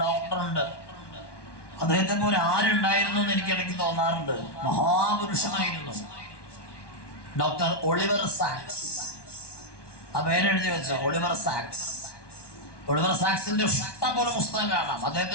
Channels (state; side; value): late; right; 1.1 ms